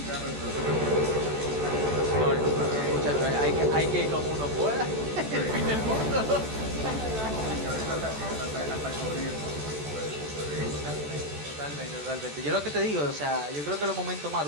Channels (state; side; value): late; left; 14 ms